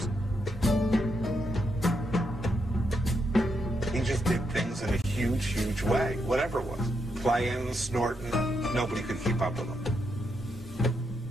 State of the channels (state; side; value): normal; both; correlation 0.81